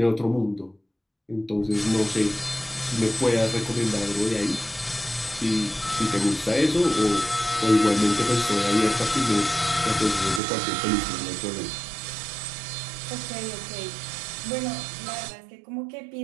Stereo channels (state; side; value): drops out; left; at 10.4 s